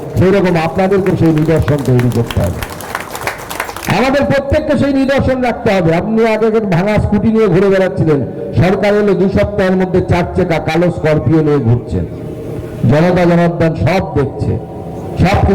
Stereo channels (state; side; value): identical; both; correlation 1.00